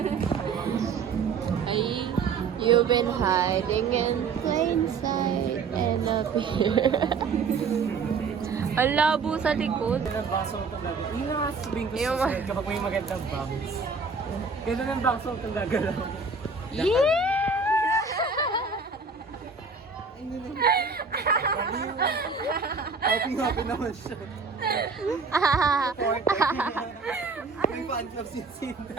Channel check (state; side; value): quieter; left; 4.8 dB